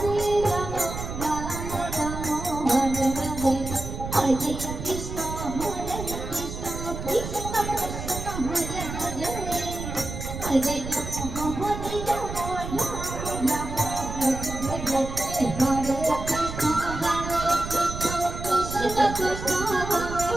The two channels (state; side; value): noise; right; rumble, 7 dB below the sound